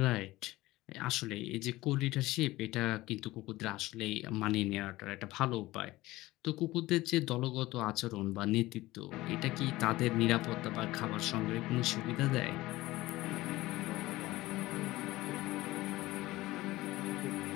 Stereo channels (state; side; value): quieter; right; 18.3 dB